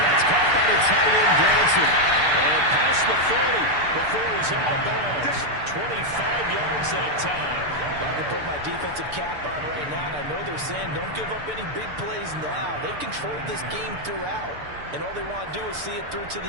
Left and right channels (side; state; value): left; late; 6.8 ms